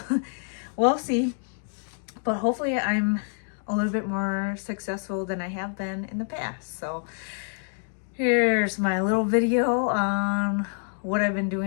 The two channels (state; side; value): silent; right; 60 dB below the other